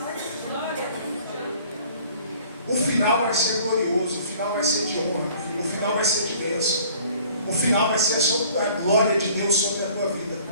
O final vai ser glorioso, o final vai ser de honra, o final vai ser de bênção, o final vai ser sobre a glória de Deus sobre a tua vida,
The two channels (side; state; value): both; inverted; correlation -0.53